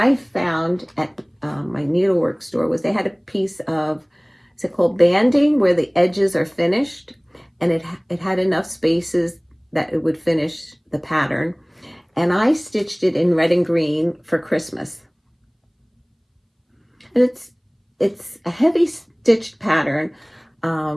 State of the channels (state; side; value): identical; both; correlation 1.00